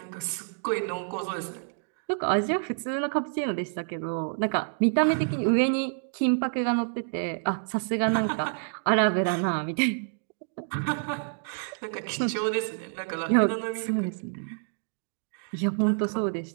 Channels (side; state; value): left; silent; digital silence